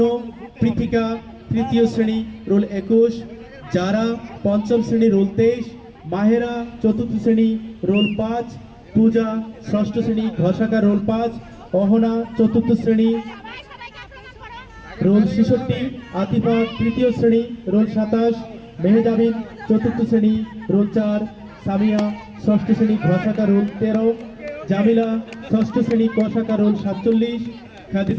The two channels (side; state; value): both; identical; correlation 1.00